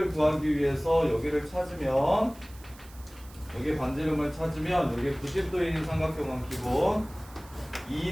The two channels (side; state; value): right; noise; hiss, 23 dB below the sound